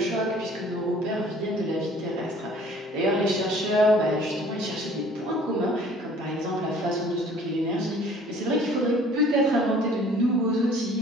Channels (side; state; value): both; normal; correlation 0.53